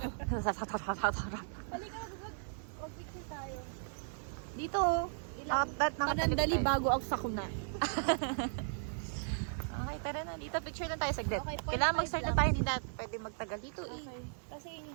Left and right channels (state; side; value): silent; left; digital silence